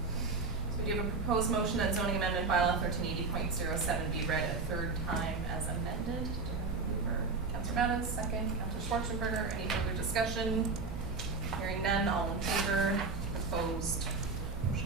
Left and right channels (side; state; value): left; quieter; 4.2 dB